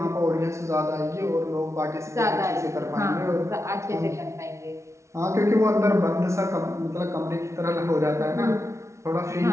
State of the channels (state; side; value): late; left; 0.14 ms